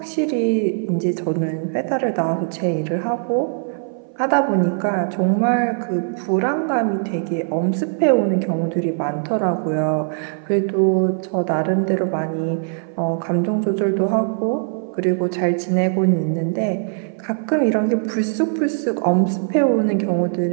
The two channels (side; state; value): left; silent; 59 dB below the other